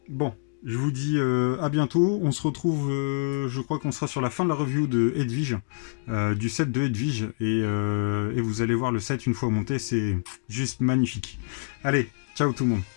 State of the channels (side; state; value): right; silent; digital silence